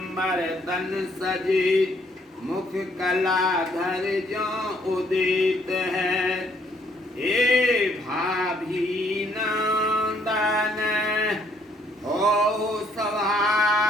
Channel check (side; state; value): both; normal; correlation 0.67